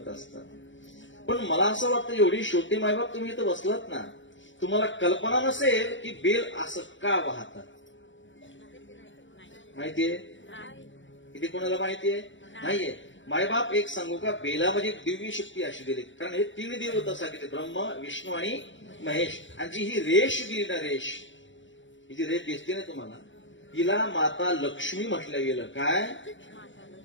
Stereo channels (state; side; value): late; right; 0.55 ms